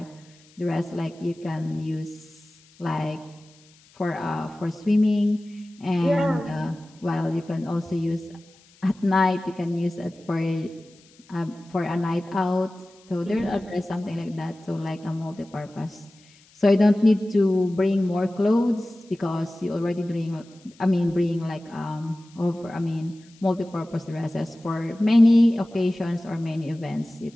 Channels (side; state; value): left; noise; hiss, 29 dB below the sound